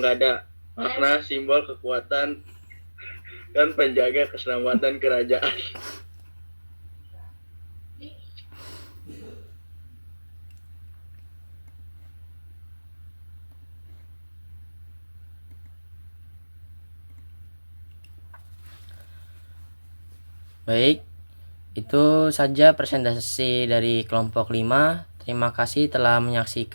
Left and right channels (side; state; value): both; inverted; correlation -1.00